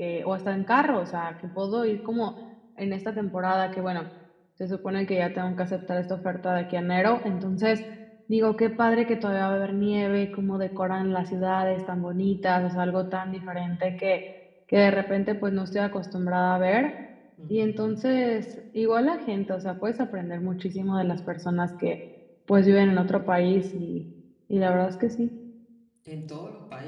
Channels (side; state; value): both; identical; correlation 1.00